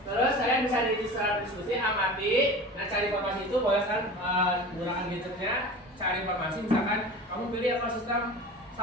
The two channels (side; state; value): both; normal; correlation 0.35